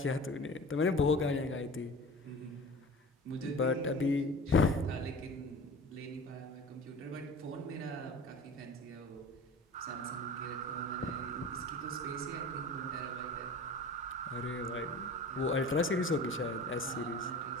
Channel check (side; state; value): both; normal; correlation 0.38